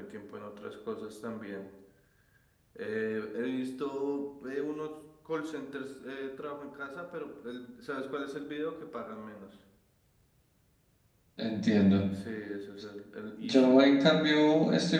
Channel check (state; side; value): identical; both; correlation 1.00